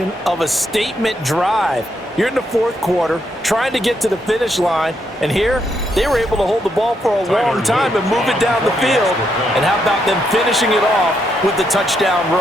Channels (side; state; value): both; normal; correlation 0.78